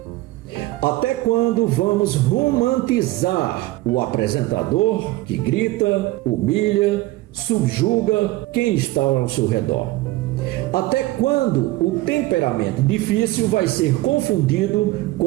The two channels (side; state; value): left; quieter; 18.4 dB